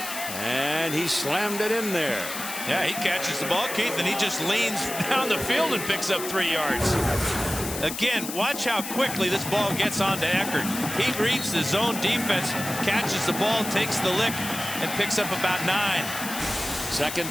and he slammed it in there. Yeah, he catches the ball, Keith, and he just leans down the field and picks up 3 yards. Again, watch how quickly this ball gets onto Eckert. He reads the zone defense, catches the ball, takes the lick, and picks up about 9.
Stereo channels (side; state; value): left; noise; hiss, 7 dB below the sound